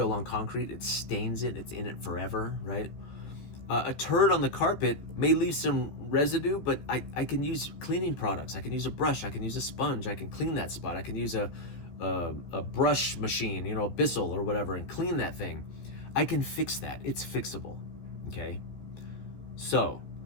on concrete. It stains it. It's in it forever, right? A turd on the carpet may leave some residue, but I can use cleaning products. I can use a brush. I can use a sponge. I can clean that spot. I can use a brush machine, a Bissell or whatever, and clean that thing. I can fix that. It's fixable, okay? So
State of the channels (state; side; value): late; right; 14 ms